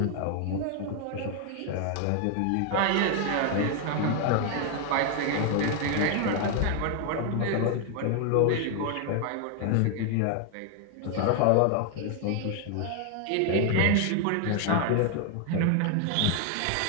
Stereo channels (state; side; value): different; both; correlation 0.01